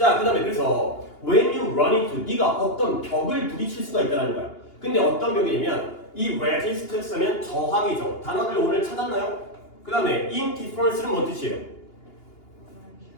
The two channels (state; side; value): late; right; 2.8 ms